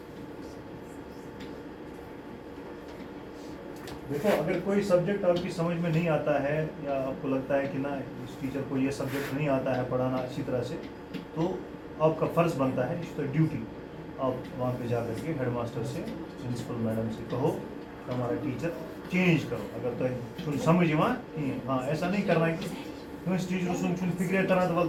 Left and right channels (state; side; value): identical; both; correlation 1.00